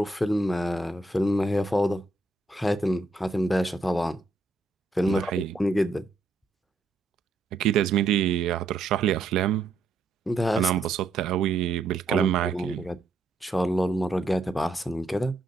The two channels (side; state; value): left; quieter; 3.1 dB